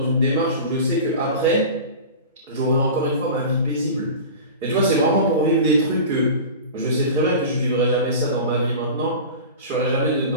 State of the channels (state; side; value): inverted; both; correlation -0.34